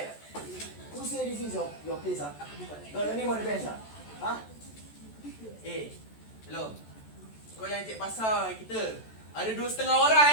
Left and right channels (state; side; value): late; right; 14 ms